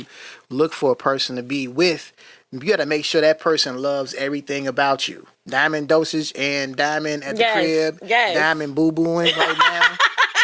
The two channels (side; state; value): both; identical; correlation 1.00